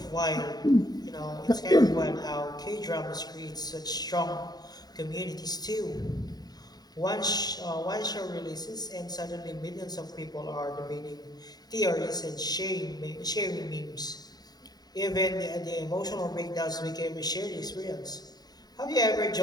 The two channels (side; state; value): right; late; 0.19 ms